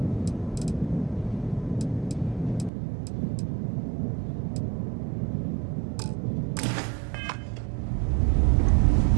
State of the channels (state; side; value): drops out; left; at 2.7 s